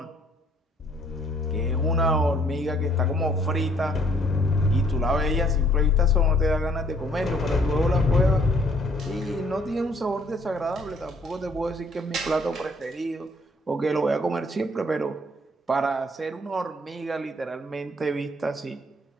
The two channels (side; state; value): both; normal; correlation 0.63